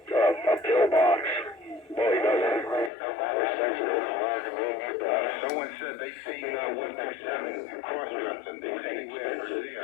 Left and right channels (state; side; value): drops out; right; at 2.9 s